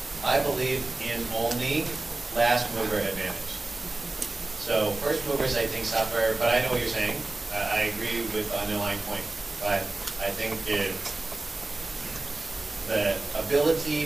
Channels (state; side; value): quieter; left; 3.1 dB